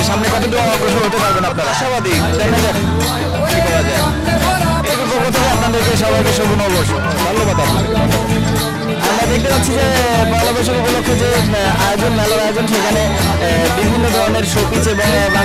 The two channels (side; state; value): both; identical; correlation 1.00